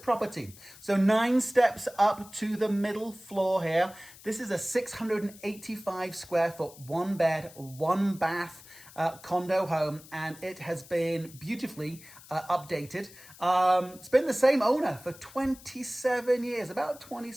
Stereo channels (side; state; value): left; noise; hiss, 20 dB below the sound